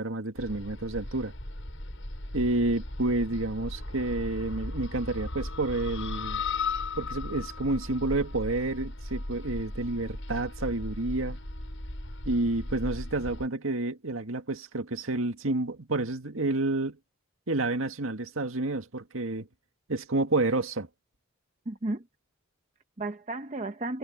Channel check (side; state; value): both; normal; correlation 0.25